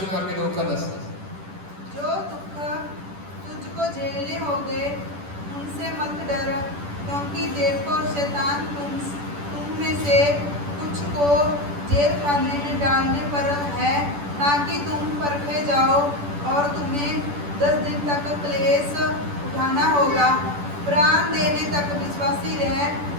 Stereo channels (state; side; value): late; left; 10 ms